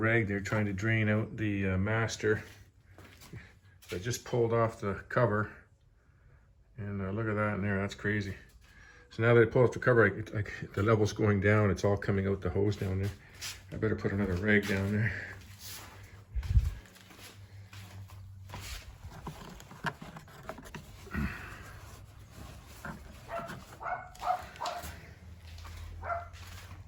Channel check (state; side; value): identical; both; correlation 1.00